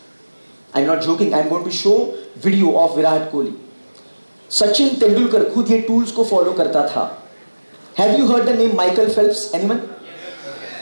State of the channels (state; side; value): inverted; both; correlation -1.00